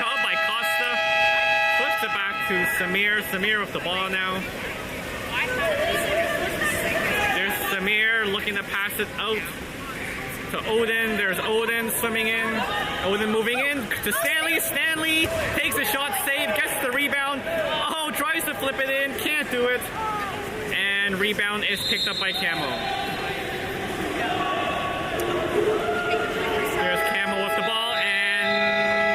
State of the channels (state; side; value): identical; both; correlation 1.00